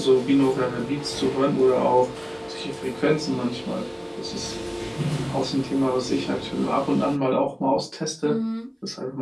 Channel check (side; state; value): both; identical; correlation 1.00